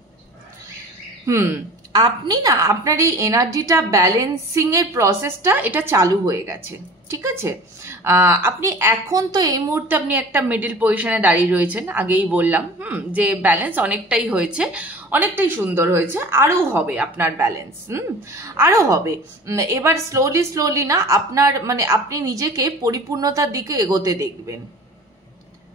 আপনি না আপনার এই এনার্জিটা ব্যালেন্সিং এর প্রসেসটা এটা চালু হয়ে গেছে, ঠিক আছে। আপনি এখন তো এই মুহূর্তে আপনি একটা মিডল পজিশনে দাঁড়িয়ে রয়েছেন, আগেই বললাম যে ব্যালেন্স অনেকটাই হয়েছে, অনেকটাই সুন্দর হয়েছে, আরো হবে আপনার ব্যালেন্স, আরো হবে। এবার স্লোলি স্লোলি না আপনার মানে আপনি নিজেকে পরিপূর্ণতার দিকে এগোতে দেখবেন,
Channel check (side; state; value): both; normal; correlation 0.41